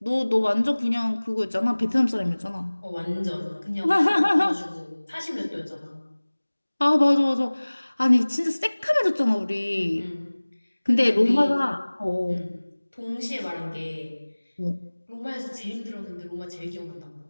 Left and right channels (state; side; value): inverted; both; correlation -1.00